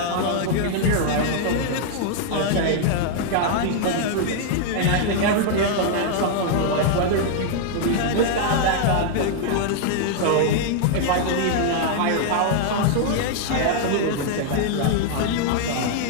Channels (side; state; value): both; different; correlation 0.00